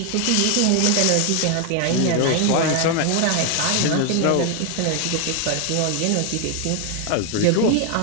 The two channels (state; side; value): different; both; correlation 0.00